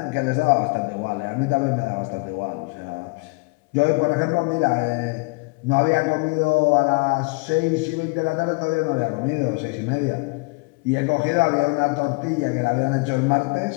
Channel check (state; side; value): quieter; right; 28.7 dB